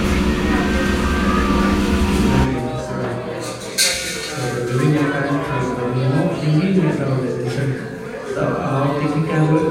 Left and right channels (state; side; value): identical; both; correlation 1.00